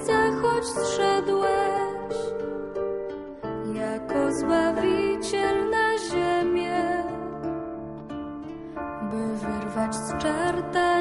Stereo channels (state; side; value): identical; both; correlation 1.00